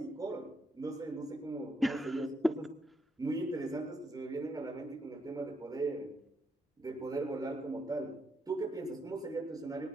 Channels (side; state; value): both; normal; correlation 0.78